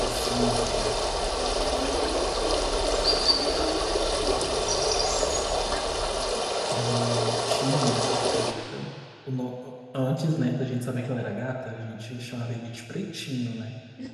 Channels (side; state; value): both; identical; correlation 1.00